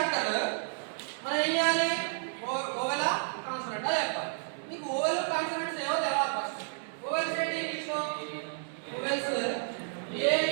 మనం ఏం చేయాలి ఓవెల్ కాన్సోనెంట్ చెప్పాలి. మీకు ఓవెల్ కాన్సోనెంట్స్ ఏవో తెలవాలి. ఫస్ట్ ఓవెల్స్ ఏంటి ఇంగ్లీష్లో vowels A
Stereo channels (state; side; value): silent; left; 57 dB below the other